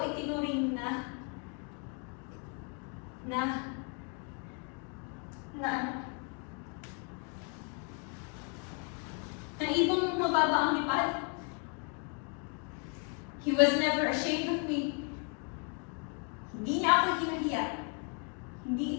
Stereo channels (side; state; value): right; quieter; 38.9 dB